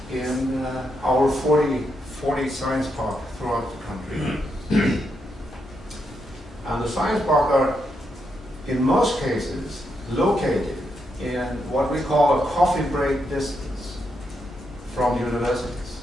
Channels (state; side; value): normal; both; correlation 0.81